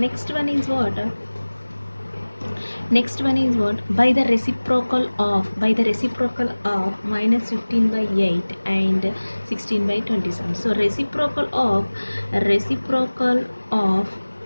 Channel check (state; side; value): inverted; both; correlation -1.00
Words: one is what? By the reciprocal of minus 15 by 8 and 16 by 27. So reciprocal of